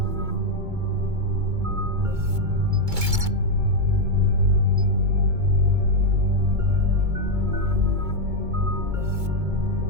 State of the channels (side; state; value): left; late; 2.2 ms